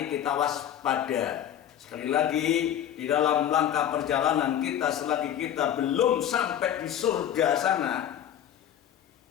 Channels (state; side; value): quieter; right; 10.3 dB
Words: kita waspada. Sekali lagi, di dalam langkah perjalanan kita selagi kita belum sampai di surga sana,